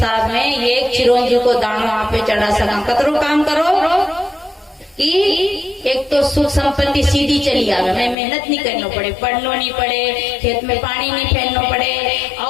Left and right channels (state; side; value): drops out; right; at 8.2 s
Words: में एक चिरंजी को दानो आप चढ़ा सका। कतरो काम करो कि एक तो सुख संपत्ति सीधी चली आवे, मैं मेहनत नहीं करना पड़े, पढ़ना नहीं पड़े, खेत में पानी नहीं फेरना पड़े,